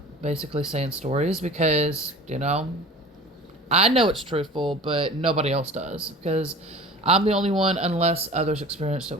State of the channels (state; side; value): normal; both; correlation 0.41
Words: basically saying stories, because, I know it's truthful, but nobody else does, because I'm the only one, unless others experienced it